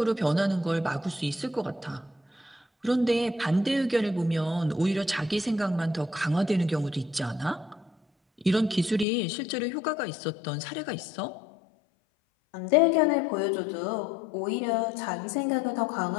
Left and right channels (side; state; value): right; drops out; at 9.1 s